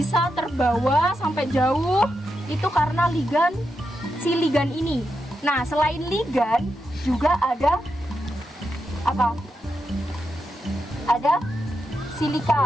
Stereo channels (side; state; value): both; normal; correlation 0.86